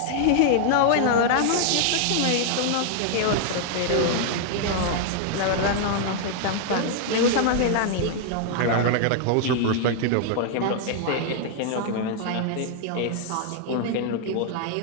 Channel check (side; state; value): both; different; correlation 0.00